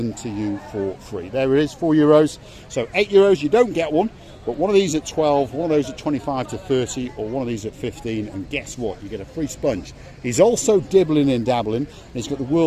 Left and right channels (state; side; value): identical; both; correlation 1.00